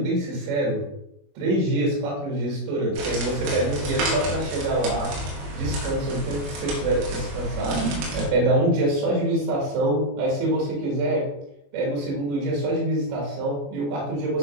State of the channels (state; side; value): late; left; 21 ms